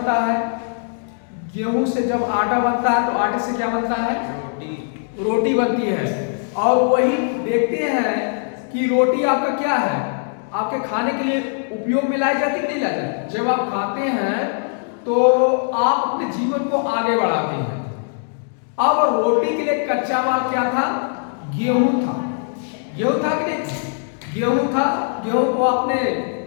है। गेहूं से जब आटा बनता है तो आटे से क्या बनता है? रोटी बनती है। और वही देखते हैं कि रोटी आपका क्या है, आपके खाने के लिए उपयोग में लाई जाती नहीं लाई जाती। जब आप खाते हैं तो आप अपने जीवन को आगे बढ़ाते हैं। अब रोटी के लिए कच्चा माल क्या था? गेहूं था। गेहूं था कि नहीं? गेहूं था। गेहूं को आपने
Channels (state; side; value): silent; right; 62 dB below the other